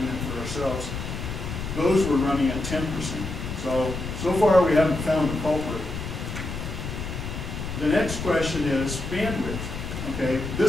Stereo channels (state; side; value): noise; left; rumble, 6 dB below the sound